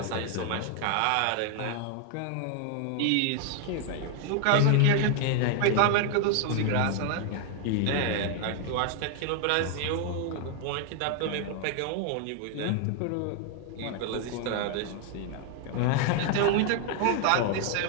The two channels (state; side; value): different; both; correlation 0.00